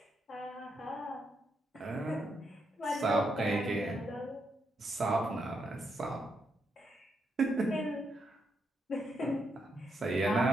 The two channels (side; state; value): both; normal; correlation 0.81